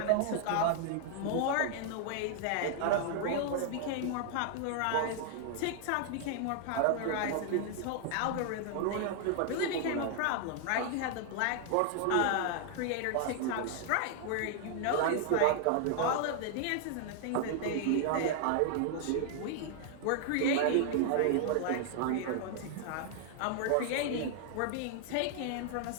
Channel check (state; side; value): different; both; correlation 0.00